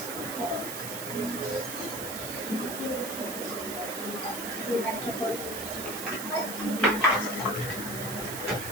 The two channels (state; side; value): noise; right; hiss, 6 dB below the sound